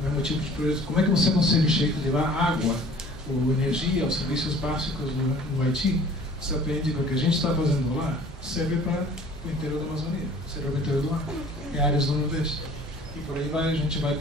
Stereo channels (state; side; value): normal; both; correlation 0.50